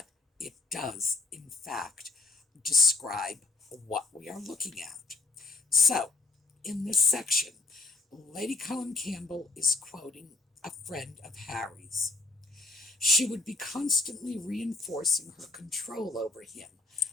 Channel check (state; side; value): quieter; right; 3.8 dB